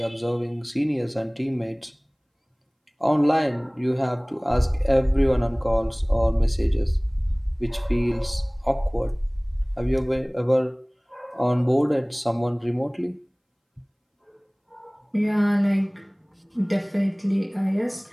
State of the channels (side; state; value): both; identical; correlation 1.00